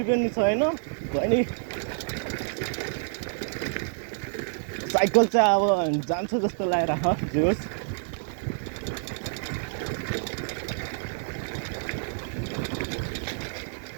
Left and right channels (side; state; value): left; silent; digital silence